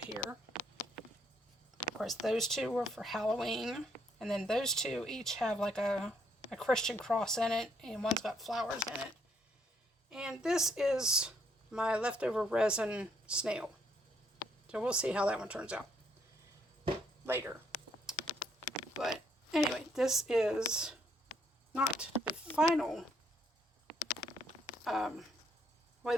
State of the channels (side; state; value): both; normal; correlation 0.70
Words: Of course, those two were for Halloween. And then those two each have like a Christian cross in it, and one's got flowers in it. And this is my leftover resin snail. So we'll see how that one turns out later. But anyway, this is not the final way